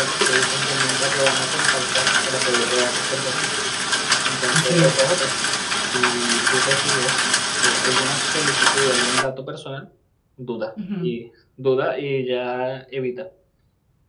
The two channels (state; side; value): identical; both; correlation 1.00